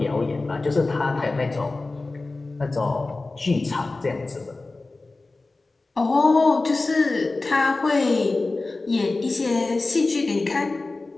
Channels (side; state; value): right; quieter; 3.4 dB